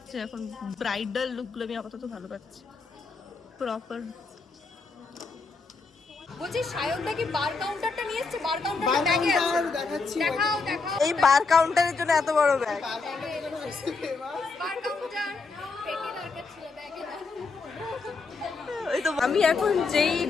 এখন ব্রাইডাল লুকগুলো আমি আপাতত ভালো পাচ্ছি, প্রপার। বলছি সায়নদা কি বার কাউন্টারটা নিয়ে এসেছে? বার কাউন্টারটা ব্যাগে আছে, দেখাও। এই বার কাউন্টারের জন্য এত বড় ব্যাগ। বার কাউন্টার পেটি দরকার ছিল, ব্যাগে না। ওই তো আমি এখন যেই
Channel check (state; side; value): quieter; right; 4.3 dB